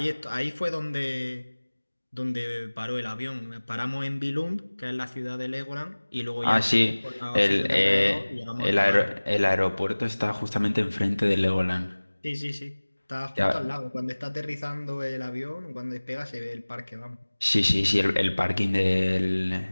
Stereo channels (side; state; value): both; inverted; correlation -1.00